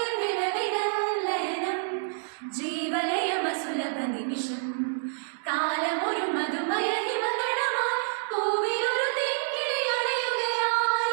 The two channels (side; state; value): left; silent; digital silence